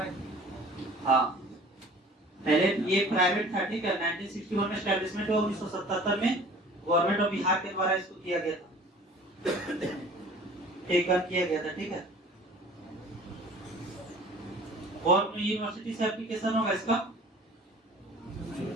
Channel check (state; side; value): normal; both; correlation 0.47